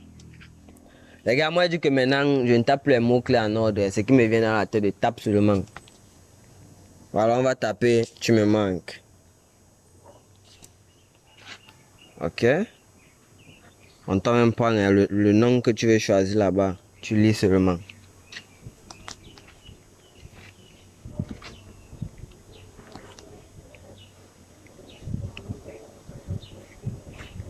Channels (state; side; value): identical; both; correlation 1.00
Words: Les gars, moi je dis que maintenant je ne tape plus les mots-clés en ordre. Ce qui me vient dans la tête, je tape seulement. Voilà, on va taper tu me manques. Ok. On t'a même pas le nom que tu veux choisir là-bas. Tu lis seulement.